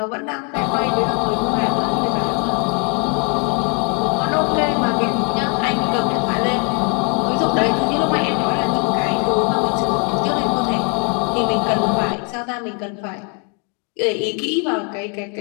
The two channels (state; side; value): quieter; right; 36.4 dB